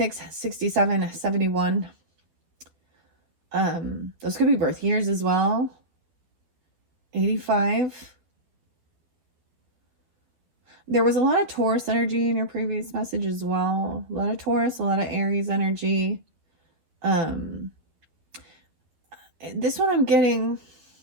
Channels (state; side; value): late; left; 12 ms